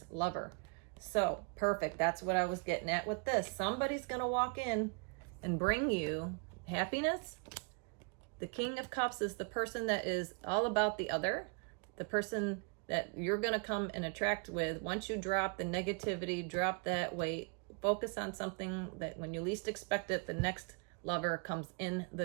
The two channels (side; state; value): left; quieter; 34.0 dB